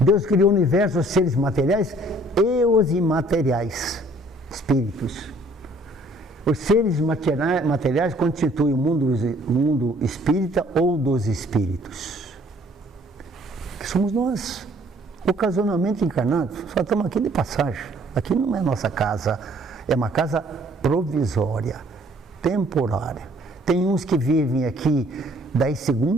criou o universo, os seres materiais e os imateriais, espíritos. Os seres materiais constituem o mundo espírita ou dos espíritos, que somos nós, ocasionalmente encarnados. Só estamos aqui de passagem. Aqui não é nossa casa, é uma casa provisória, temporária. Tem uns que vivem aqui 10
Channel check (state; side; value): normal; both; correlation 0.59